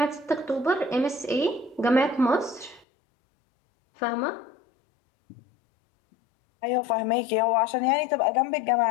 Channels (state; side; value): drops out; right; at 2.9 s